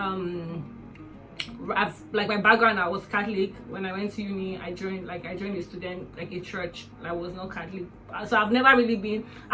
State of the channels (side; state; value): both; identical; correlation 1.00